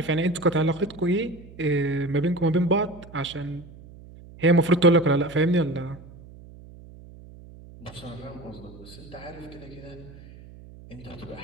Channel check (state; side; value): noise; right; hum, 19 dB below the sound